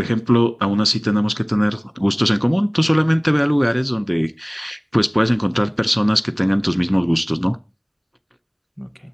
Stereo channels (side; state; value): both; identical; correlation 1.00